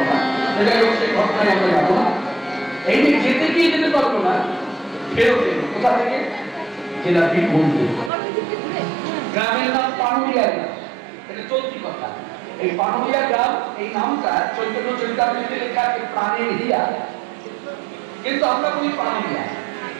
যাই হোক, সেই ঘটনায় আমরা যাবো না। এই যে যেতে গিয়ে যেতে পারবো না, ফেরত এলো কোথা থেকে? জেলা বীরভূম। গ্রামের নাম পানুরিয়া গ্রাম, এটা চলতি কথা। এই পানুরিয়া গ্রাম, এই নামটা চৈতন্য চরিতামৃতে লেখা আছে প্রাণের হিয়া, কিন্তু আমরা বলি পানুরিয়া।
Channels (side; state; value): left; drops out; at 8.1 s